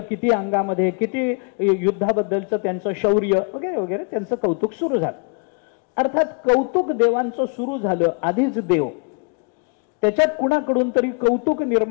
अंगामध्ये, किती युद्धाबद्दलचं त्यांचं शौर्य वगैरे वगैरे त्यांचं कौतुक सुरू झालं. अर्थात कौतुक देवांचं सुरू झालं आधीच देव, त्याच्यात कुणाकडून तरी कौतुक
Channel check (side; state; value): right; quieter; 38.5 dB